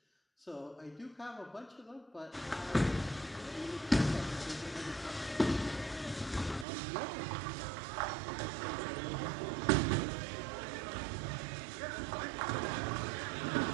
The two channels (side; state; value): left; drops out; at 6.7 s